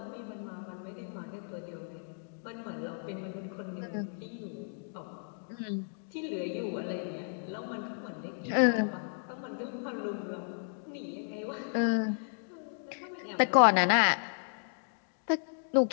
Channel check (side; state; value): right; silent; digital silence